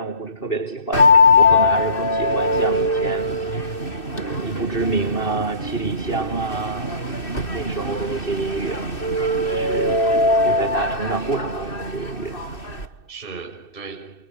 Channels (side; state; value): right; late; 2.6 ms